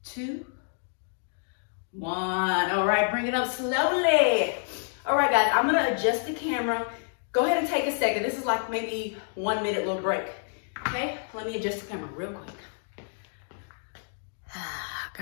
2, 1. All right, bring it up slowly. All right, guys, I'm gonna adjust the camera. Go ahead and take a second. This is like maybe 1 minute little break. Okay, let me adjust the camera real quick.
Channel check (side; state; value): right; silent; digital silence